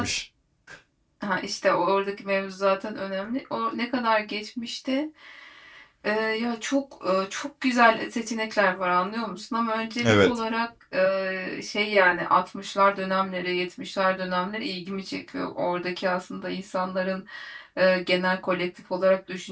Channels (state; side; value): identical; both; correlation 1.00